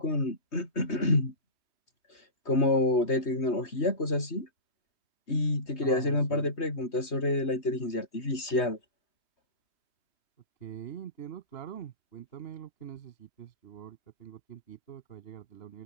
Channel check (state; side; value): late; right; 3.2 ms